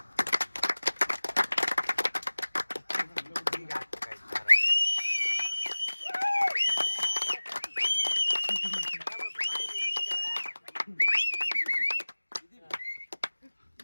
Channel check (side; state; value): both; inverted; correlation -1.00